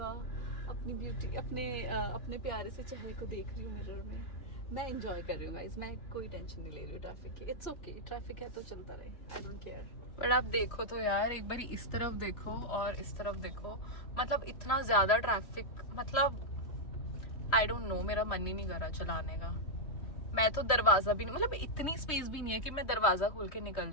अपनी ब्यूटी, अपने प्यारे से चेहरे को देख रही हूँ मिरर में। मैं एंजॉय कर रही हूँ गाइस, मैं कोई टेंशन नहीं ले रही हूँ ट्रैफिक की। इट्स ओके, ट्रैफिक है तो चलता रहे, आई डोंट केयर। बट आप देखो तो यार, एक बार इस तरफ देखो और इस तरफ देखो, मतलब इतना ज्यादा ट्रैफिक, मतलब आई डोंट नो, मेरा मन ही नहीं कर रहा चलाने का। मैं तो दरवाजा भी नहीं, मतलब इतनी स्पेस भी नहीं है कि मैं दरवाजा खोल के निकल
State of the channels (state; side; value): late; right; 3.0 ms